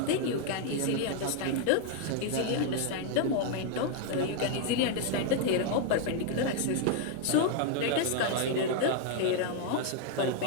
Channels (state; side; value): different; both; correlation 0.00